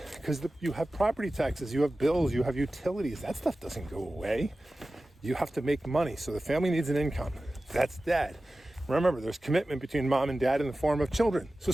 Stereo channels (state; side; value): normal; both; correlation 0.96